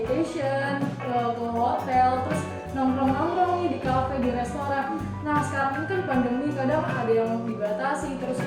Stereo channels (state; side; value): identical; both; correlation 1.00